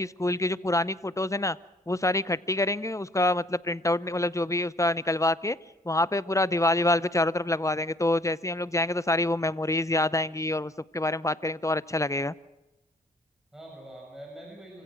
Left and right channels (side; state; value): both; normal; correlation 0.58